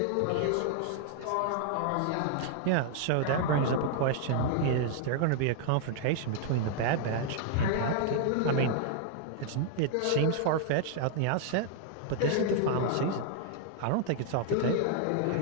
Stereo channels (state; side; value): different; both; correlation 0.00